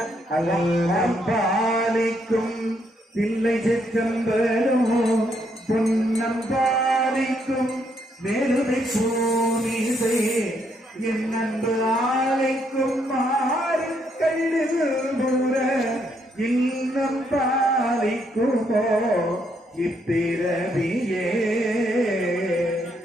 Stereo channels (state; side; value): normal; both; correlation 0.74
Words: அல்லம் பாலிக்கும் தில்லை சிற்றம்பலம், பொன்னம் பாலிக்கும் மேலுமை பூமிசை, என் அன்பு ஆலைக்கும் மாறு கல்லுபுற, இன்னம் பாலிக்குமோ இப்பிறவியே.